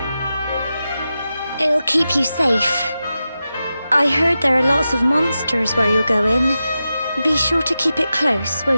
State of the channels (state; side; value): inverted; both; correlation -0.91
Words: It'll keep you safe. I heard there are lots of monsters where you're going. Be sure to keep it close,